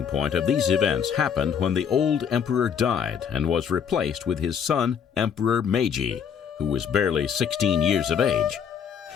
point of these events happened when the old emperor died and was replaced with his son, Emperor Meiji, who was barely 16 years of age.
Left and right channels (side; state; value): right; quieter; 7.6 dB